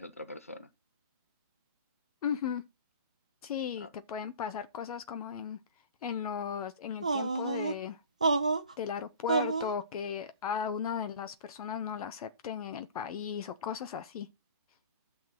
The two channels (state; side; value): inverted; both; correlation -0.44